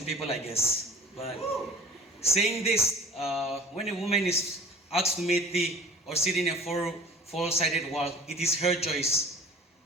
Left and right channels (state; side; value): normal; both; correlation 0.46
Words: people, I guess. But saying this, when a woman is asked to make tea or sit in a four-sided wall, it is her choice.